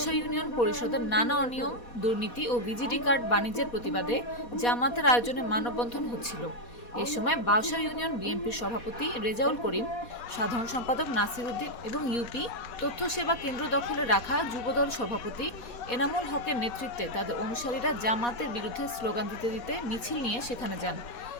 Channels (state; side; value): late; right; 4.2 ms